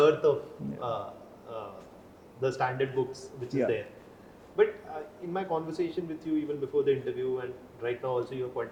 of the standard books which is there. But in my conversation with you even before the interview and right now also, you're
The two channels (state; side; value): identical; both; correlation 1.00